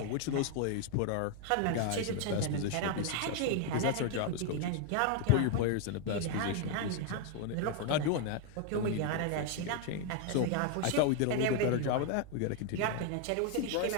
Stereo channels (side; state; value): both; different; correlation 0.00